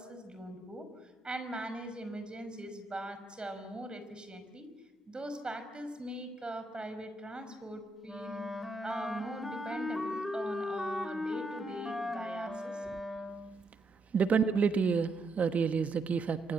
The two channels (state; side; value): quieter; left; 3.2 dB